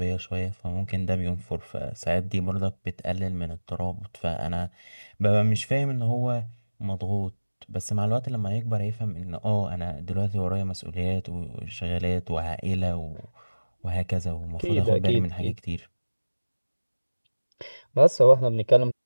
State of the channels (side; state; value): both; inverted; correlation -1.00